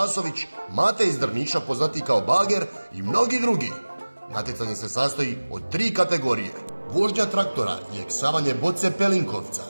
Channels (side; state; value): both; inverted; correlation -1.00